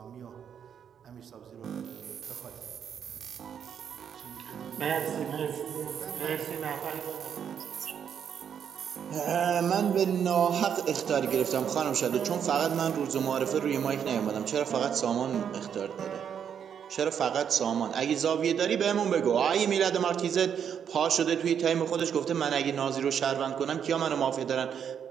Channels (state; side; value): quieter; left; 8.1 dB